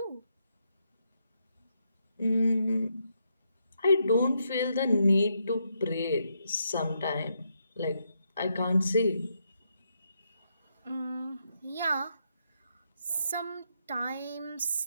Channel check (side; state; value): both; inverted; correlation -0.80